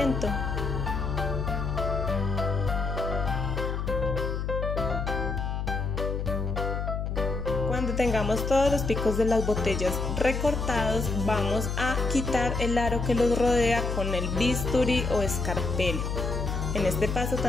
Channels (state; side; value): noise; left; hum, 2 dB below the sound